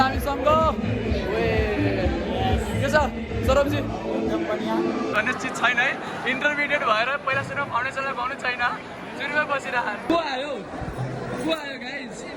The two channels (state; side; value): identical; both; correlation 1.00